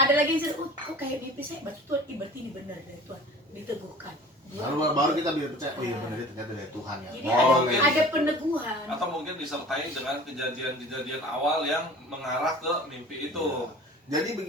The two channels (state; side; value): normal; both; correlation 0.43